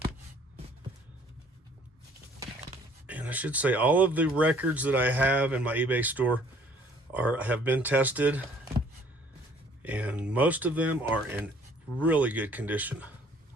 And I should say all of the records that I have in my eBay store have been tested, and most of them are in really good condition.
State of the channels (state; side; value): normal; both; correlation 0.57